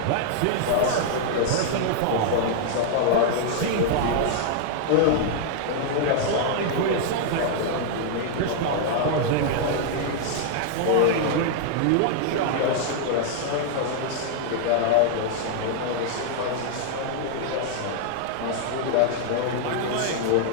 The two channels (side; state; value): both; different; correlation -0.01